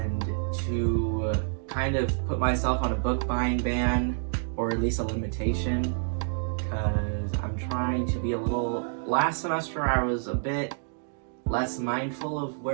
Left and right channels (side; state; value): left; silent; digital silence